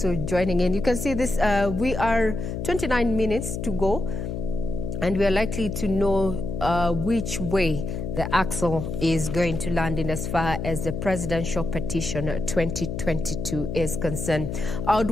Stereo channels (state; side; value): noise; left; hum, 4 dB below the sound